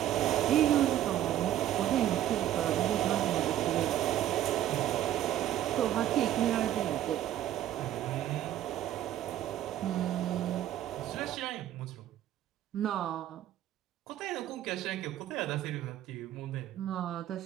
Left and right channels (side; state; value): left; quieter; 12.3 dB